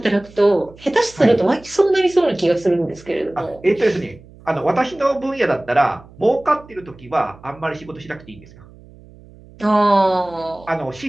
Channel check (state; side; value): noise; right; hum, 23 dB below the sound